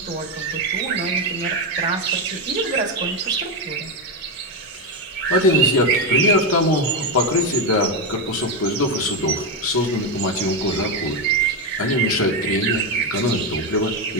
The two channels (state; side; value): normal; both; correlation 0.09